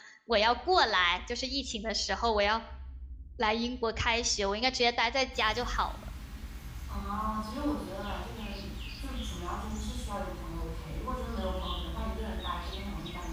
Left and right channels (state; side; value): identical; both; correlation 1.00